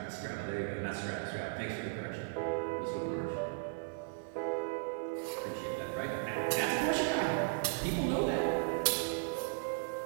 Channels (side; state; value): left; silent; digital silence